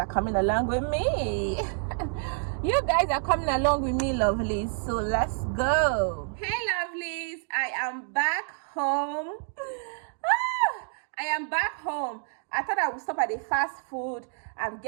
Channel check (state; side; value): silent; left; 59 dB below the other